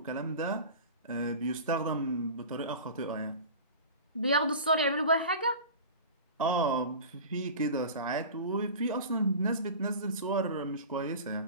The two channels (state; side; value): inverted; both; correlation -0.35